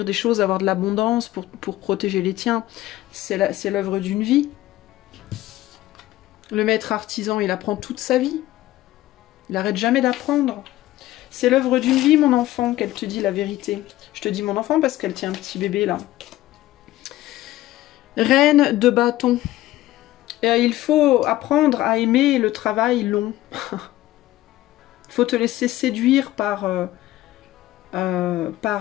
des choses, avoir de l'abondance pour protéger les tiens, c'est l'œuvre d'une vie. Le maître artisan, il apprend toute sa vie. Il n'arrête jamais d'apprendre. C'est l'œuvre d'une vie, mon enfant, qu'elle te dit la vérité. Je te dis mon enfant parce qu'elle tient un petit bébé, là. Reine de bâton. Il faut apprendre à aimer le travail long. Il faut te laisser séduire par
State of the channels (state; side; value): quieter; right; 15.7 dB